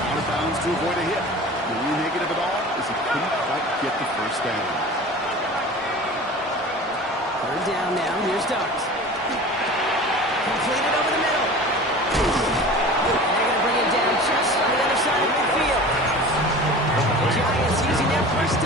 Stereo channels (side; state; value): both; normal; correlation 0.38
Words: of bounds to avoid a hit. The only negative at all is he couldn't quite get the first down. 3rd down now. Here's Dobbs. Completed over the middle. And they're going to bring it down just on the other side of midfield. The Giants using their first